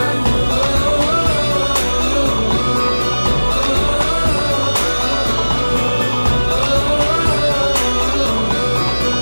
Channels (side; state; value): both; inverted; correlation -1.00